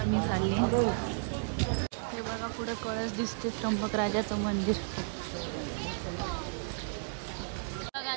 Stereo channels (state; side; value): silent; left; digital silence